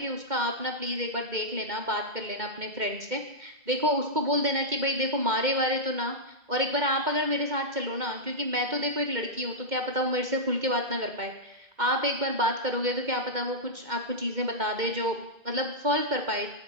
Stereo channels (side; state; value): left; late; 2.1 ms